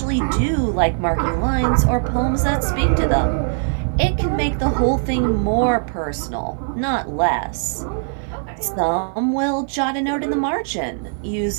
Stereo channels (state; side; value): silent; left; digital silence